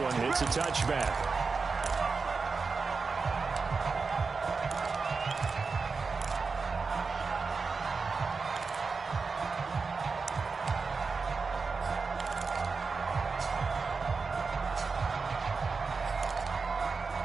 It's a touchback.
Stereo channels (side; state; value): left; quieter; 4.6 dB